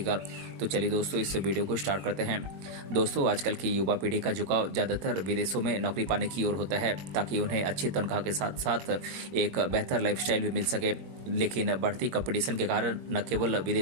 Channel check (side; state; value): left; late; 21 ms